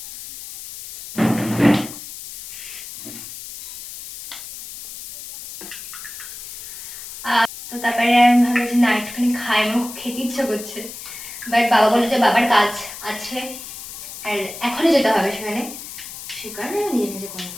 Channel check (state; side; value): noise; left; hiss, 12 dB below the sound